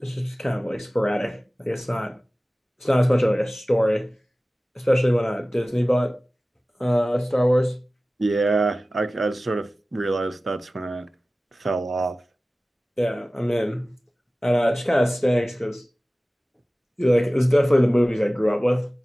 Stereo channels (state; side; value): normal; both; correlation 0.97